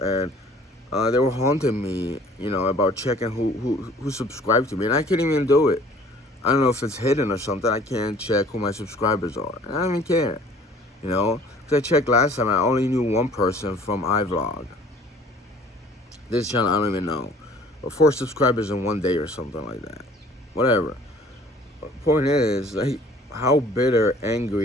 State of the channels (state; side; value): normal; both; correlation 0.52